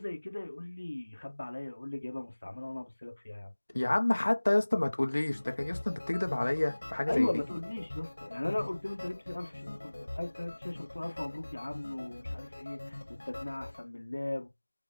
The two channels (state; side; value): inverted; both; correlation -1.00